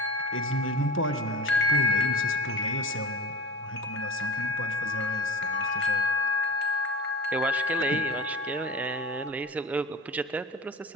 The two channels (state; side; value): normal; both; correlation 0.33